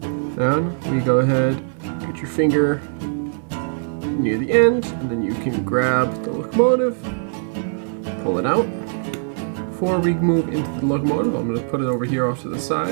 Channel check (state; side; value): silent; left; 57 dB below the other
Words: Then we go ahead, get your finger near the end, and then you can grab the locomotive, pull it out. Before we move into the locomotive, I'm going to put it over here off to the